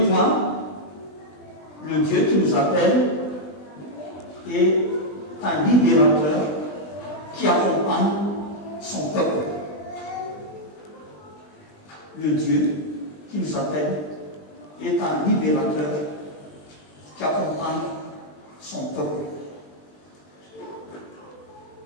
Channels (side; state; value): right; late; 20 ms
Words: point, le Dieu qui nous appelle est un libérateur qui accompagne son peuple. Le Dieu qui nous appelle est un libérateur qui accompagne son peuple.